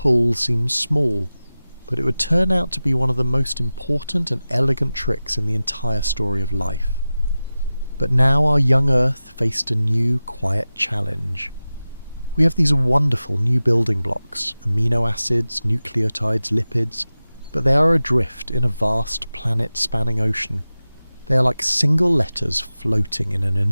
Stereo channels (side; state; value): both; inverted; correlation -0.96